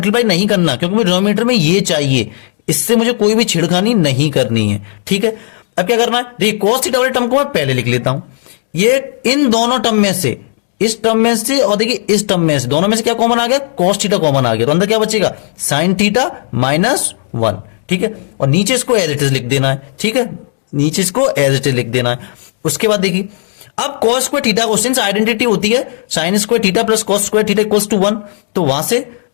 नहीं करना क्योंकि मुझे डिनोमिनेटर में ये चाहिए, इससे मुझे कोई भी छिड़खानी नहीं करनी है। ठीक है, अब क्या करना है, देखिए कॉस थीटा वाले टर्म को मैं पहले लिख लेता हूं, ये इन दोनों टर्म में से, इस टर्म में से और देखिए इस टर्म में से, दोनों में से क्या कॉमन आ गया, कॉस थीटा कॉमन आ गया, तो अंदर क्या बचेगा, साइन थीटा माइनस 1। ठीक है, और नीचे इसको एज इट इज लिख देना है। ठीक है, नीचे इसको एज इट इज लिख देना है। उसके बाद देखिए अब कॉस स्क्वायर थीटा को सिंस आइडेंटिटी होती है sine square theta plus cos square theta equals to 1, तो वहां से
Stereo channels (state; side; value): silent; right; 67 dB below the other